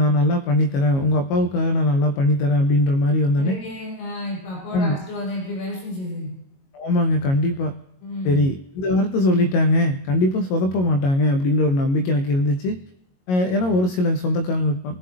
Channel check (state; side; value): late; right; 22 ms